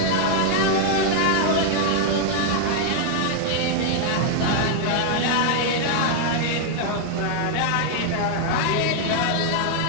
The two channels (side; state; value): both; different; correlation 0.00